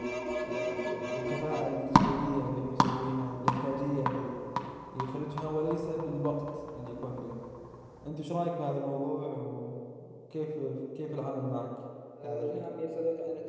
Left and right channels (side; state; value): both; identical; correlation 1.00